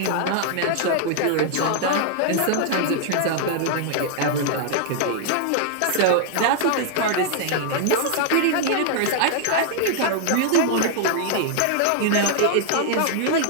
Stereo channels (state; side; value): different; both; correlation 0.00